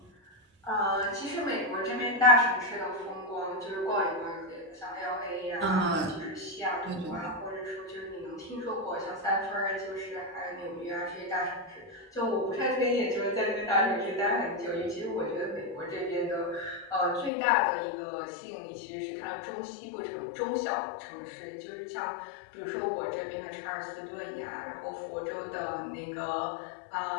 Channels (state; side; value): drops out; right; at 17.3 s